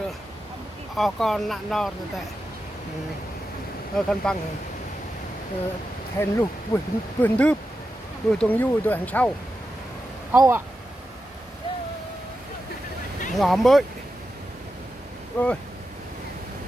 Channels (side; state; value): both; normal; correlation 0.89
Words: rồi con nạn nọ rồi tại con bằng hèn lục vườn đướp vườn tuồng du rồi hàng sau âu ạ ngõ mới ơi